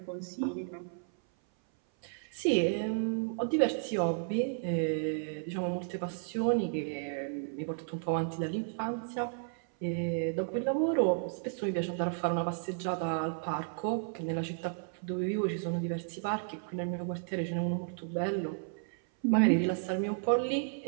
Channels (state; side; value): silent; left; 56 dB below the other